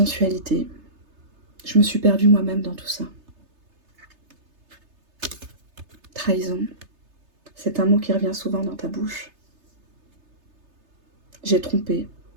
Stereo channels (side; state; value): left; late; 3.3 ms